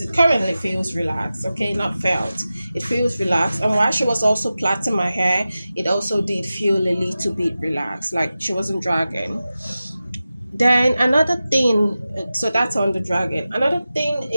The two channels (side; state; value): both; inverted; correlation -0.94